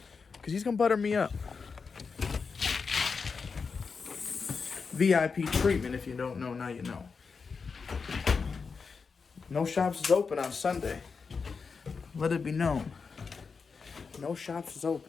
Cause he's gonna butter me up. VIP treatment, if you don't know, now you know. No shops is open on Sunday. Let it be known. No shops is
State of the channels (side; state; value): right; quieter; 5.2 dB